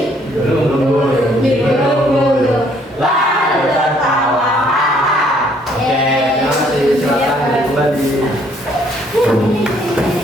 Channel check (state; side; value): normal; both; correlation 0.64